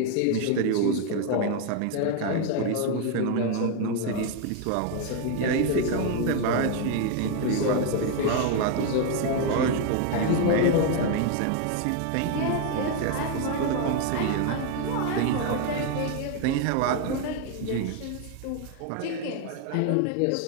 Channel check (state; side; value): different; both; correlation 0.01